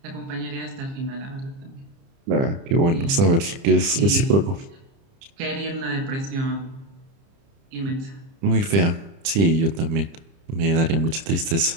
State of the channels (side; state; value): left; late; 30 ms